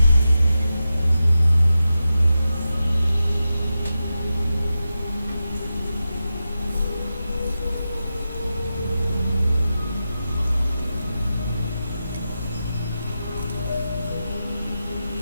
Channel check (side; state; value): both; inverted; correlation -0.91